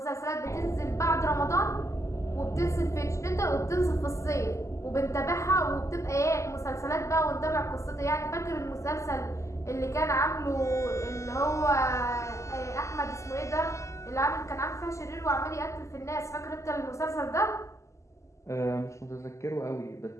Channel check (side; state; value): right; late; 0.14 ms